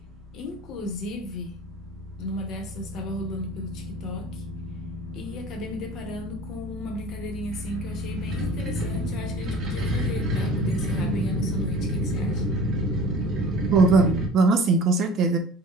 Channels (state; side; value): normal; both; correlation 0.43